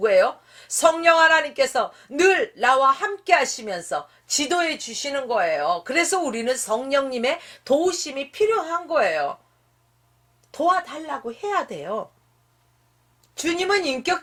성령 하나님께서 늘 나와 함께 하시면서 지도해 주시는 거예요. 그래서 우리는 성령님의 도우심이 필요한 거예요. 도와달라고 해야 돼요. 주님은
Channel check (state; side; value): identical; both; correlation 1.00